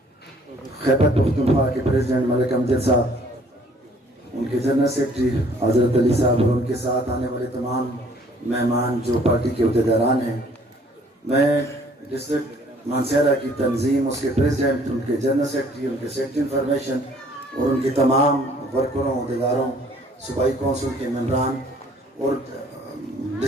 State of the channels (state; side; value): normal; both; correlation 0.58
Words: खैबर पख्तूनख्वा के प्रेसिडेंट मलिक अमजद साहब, उनके जनरल सेक्रेटरी हज़रत अली साहब और उनके साथ आने वाले तमाम मेहमान जो पार्टी के अहदेदारान हैं, मैं डिस्ट्रिक्ट मानसेरा की तंजीम, उसके प्रेसिडेंट, उनके जनरल सेक्रेटरी, उनके सेक्रेटरी इंफॉर्मेशन और उनके तमाम वर्करों, अहदेदारों, सूबाई कौंसिल के मेंबरान और